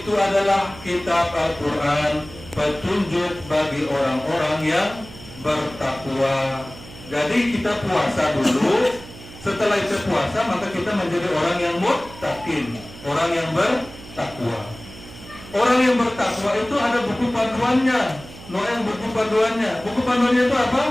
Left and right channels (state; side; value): noise; right; hum, 17 dB below the sound